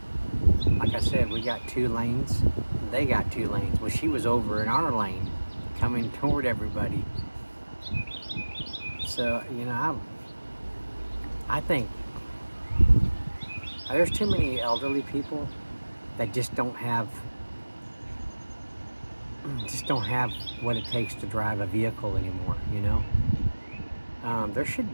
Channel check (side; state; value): both; inverted; correlation -1.00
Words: like I said, we got 2 lanes. They got 2 lanes. Well, she was over in our lane, coming toward everybody. So, you know, I think there's too many elderly people that just don't have what it takes to drive a vehicle anymore, you know? There should